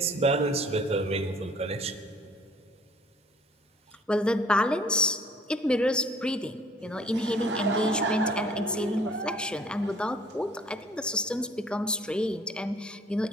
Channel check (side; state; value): both; normal; correlation 0.56